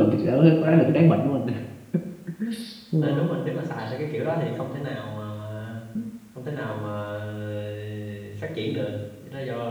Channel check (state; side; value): identical; both; correlation 1.00